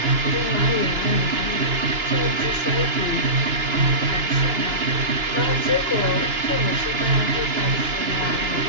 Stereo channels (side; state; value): left; late; 2.9 ms